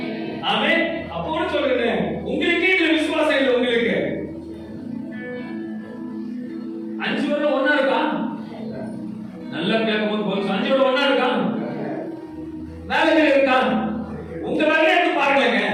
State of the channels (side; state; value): both; identical; correlation 1.00